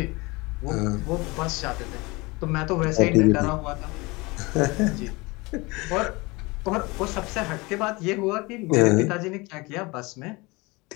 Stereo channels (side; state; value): right; quieter; 24.5 dB